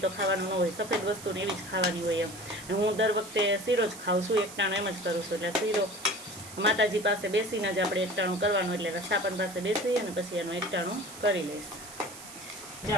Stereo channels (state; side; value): noise; right; hiss, 14 dB below the sound